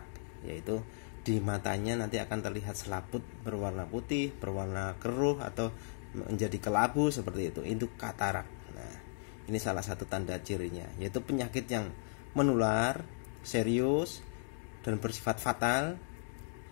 yaitu di matanya nanti akan terlihat selaput berwarna putih, berwarna keruh, atau menjadi kelabu seperti itu katarak. Nah, ini salah satu tanda cirinya, yaitu penyakit yang menular, serius, dan bersifat fatal,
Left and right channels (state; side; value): silent; right; digital silence